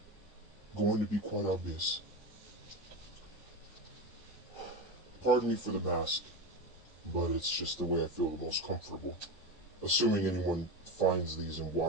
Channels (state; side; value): normal; both; correlation 0.21